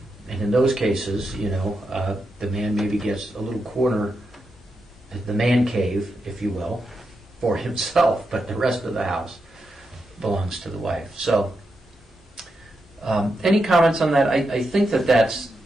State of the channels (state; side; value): normal; both; correlation 0.86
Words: And in those cases, the man maybe gets a little corner, the man cave, if you will, for himself, but the rest of the house belongs to the wife. So, any comments on that? I think that that's